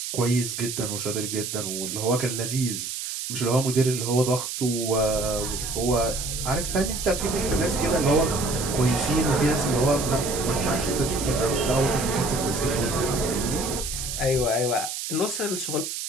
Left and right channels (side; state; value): right; noise; hiss, 5 dB below the sound